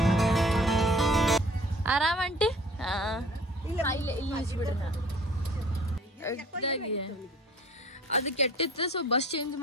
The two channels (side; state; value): both; normal; correlation 0.50